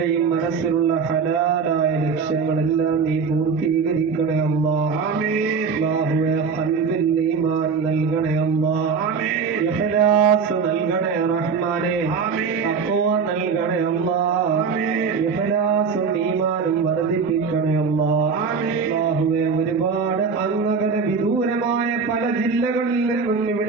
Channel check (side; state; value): left; quieter; 5.6 dB